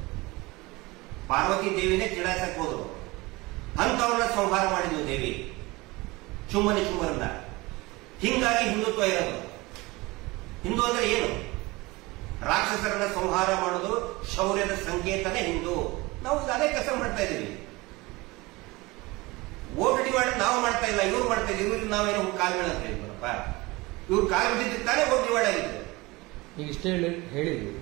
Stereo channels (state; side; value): quieter; left; 22.5 dB